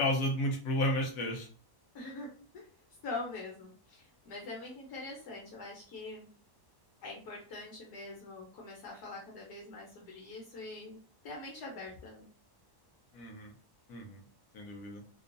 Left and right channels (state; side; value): late; right; 1.1 ms